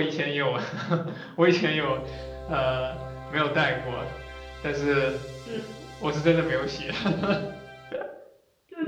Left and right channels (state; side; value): identical; both; correlation 1.00